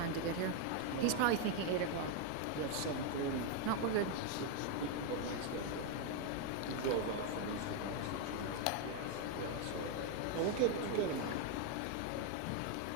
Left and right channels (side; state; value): both; different; correlation 0.01